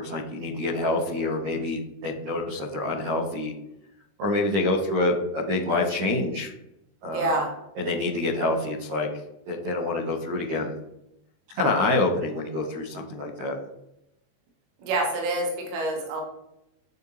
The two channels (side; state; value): left; late; 21 ms